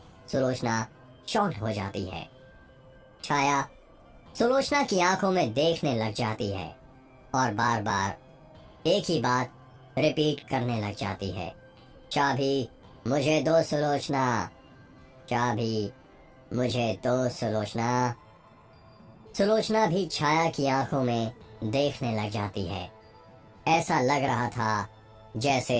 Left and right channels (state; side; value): identical; both; correlation 1.00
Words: सुलोचना शॉक्ड हो जाती है। छाया सुलोचना की आंखों में देखने लग जाती है और बार बार एक ही बात रिपीट करने लग जाती है, चाबी मुझे दो सुलोचना, चाबी मुझे दो सुलोचना। सुलोचना भी छाया की आंखों में देखने लग जाती है। ऐसा लग रहा था जैसे